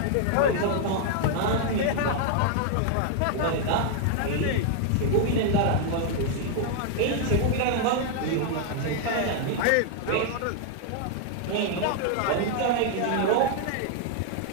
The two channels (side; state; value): both; different; correlation 0.00